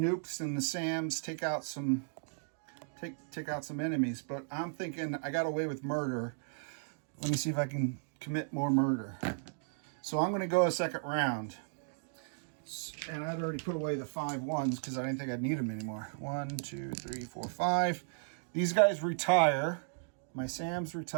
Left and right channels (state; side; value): silent; left; digital silence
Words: and the SAMs take out some enemies, but I'm thinking I got away with murder. Let me see if I can commit more murder. So I'm going to go a second round. And I'd already put away the 5 ones because I didn't think I'd need them anymore. 1, 2, 3, 4, 5. These guys retire. My SAMs